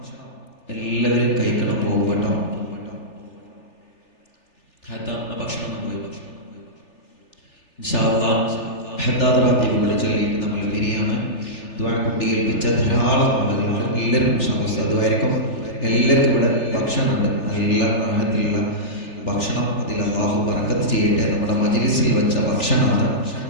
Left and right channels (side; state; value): right; late; 3.4 ms